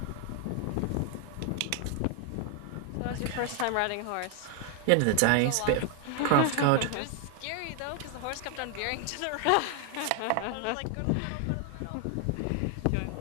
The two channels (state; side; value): different; both; correlation 0.00